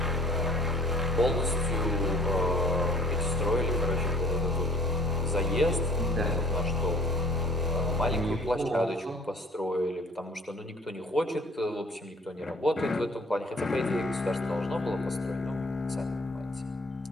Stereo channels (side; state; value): both; normal; correlation 0.53